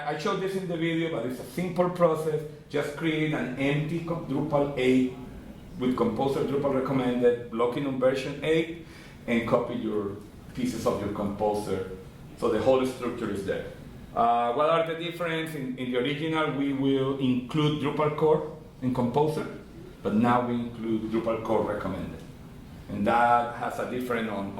showed this in the video, but it's a simple process. Just create an empty Drupal 8 with Composer Drupal Recommended, locking on version 8, and copy your pieces of your Composer, so the whole structure is there. What are the differences? In the original, we will include Drupal core in Composer, but now we include Drupal core recommended. And that has a difference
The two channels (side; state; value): both; identical; correlation 1.00